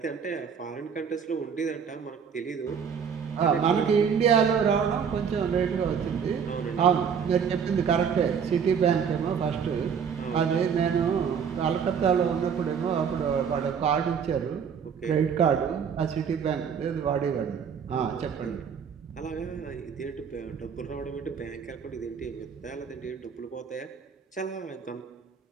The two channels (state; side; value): quieter; left; 7.0 dB